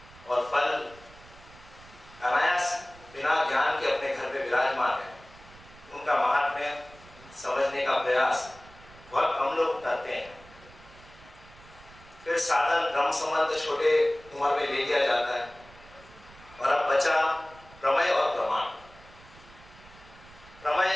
और फल अनायास बिना ज्ञान के अपने घर में विराजमान है। उनका महात्म्य समझने का प्रयास बहुत कम लोग करते हैं। फिर साधन ब्रह्म संबंध छोटे उम्र में ले लिया जाता है, और अब बचा प्रमेय और प्रमाण।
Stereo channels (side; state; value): right; noise; rumble, 22 dB below the sound